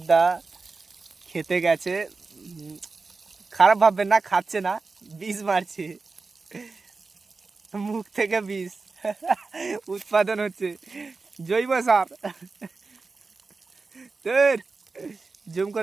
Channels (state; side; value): quieter; left; 4.1 dB